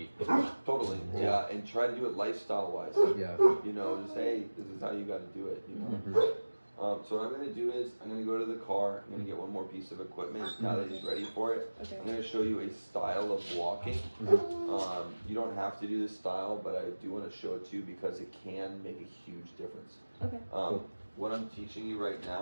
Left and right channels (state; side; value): inverted; both; correlation -1.00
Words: feet. Totally. Yeah, and try to do it lifestyle-wise. Yeah. You know, just, hey, this is how you got to do it, you know? Mhm. So what I'm going to do is I'm going to go to the car. I'm going to get one more piece of equipment now that he's ready for it. Okay. I'm going to show you a style of walking. You don't have to do this style, but I do want to show it to you because it can make a huge difference. Okay. What I'm teaching you right